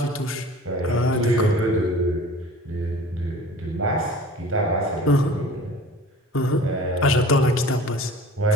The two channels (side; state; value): both; normal; correlation 0.44